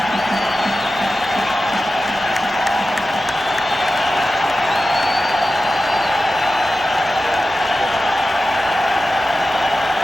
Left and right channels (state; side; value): normal; both; correlation 0.93